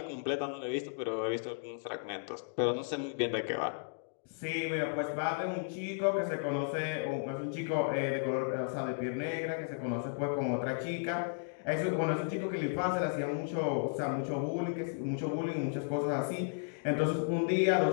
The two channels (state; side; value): silent; right; digital silence